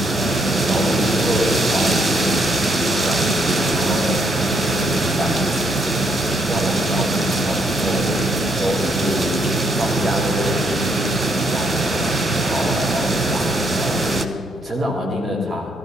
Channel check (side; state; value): both; normal; correlation 0.73